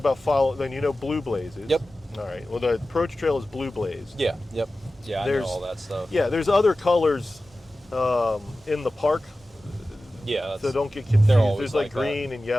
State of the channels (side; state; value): both; normal; correlation 0.95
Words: then you know blue blazes. Yep. All right. Well, the approach trail is blue blaze. Yeah. Yep. Yeah, I know There's- all that stuff. Yeah. There's other colors in the park, Yeah. That's, so don't get confused. they're always There's like like that. green and